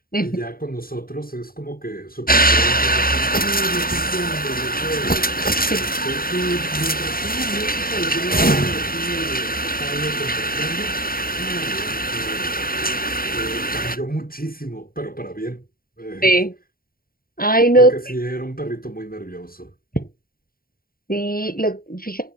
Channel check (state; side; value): late; right; 0.43 ms